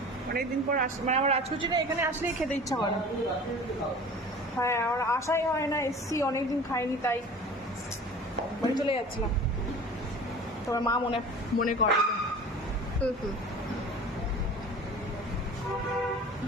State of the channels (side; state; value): both; normal; correlation 0.40